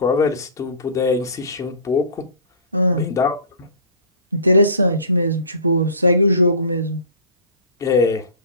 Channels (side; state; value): both; inverted; correlation -0.38